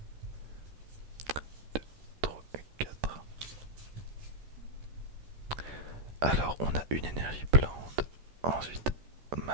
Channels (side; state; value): left; late; 14 ms